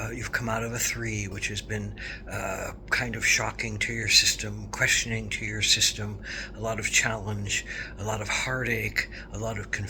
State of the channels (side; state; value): both; identical; correlation 1.00